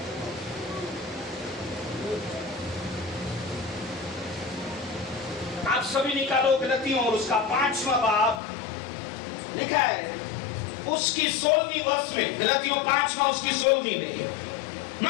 आप सभी निकालो गलतियों, और उसका 5वां बाब लिखा है उसकी 16वीं वर्ष में। गलतियों 5वां उसकी 16वीं में।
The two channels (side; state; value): right; drops out; at 8.4 s